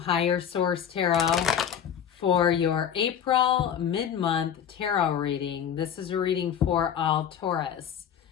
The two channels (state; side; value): quieter; right; 8.7 dB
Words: Source Tarot for your April mid-month tarot reading. This is a reading for all Taurus.